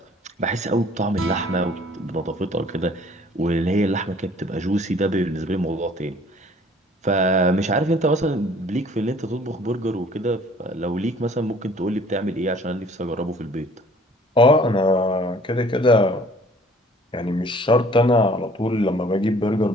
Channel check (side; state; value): both; normal; correlation 0.54